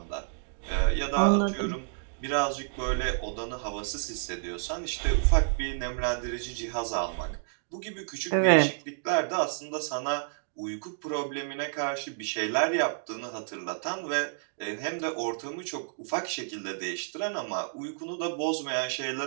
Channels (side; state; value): left; silent; digital silence